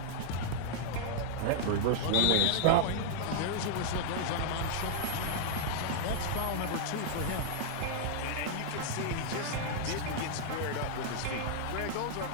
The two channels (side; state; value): both; different; correlation -0.01